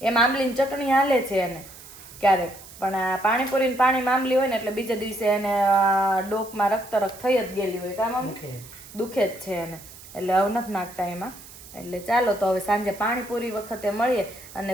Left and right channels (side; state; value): right; noise; hiss, 18 dB below the sound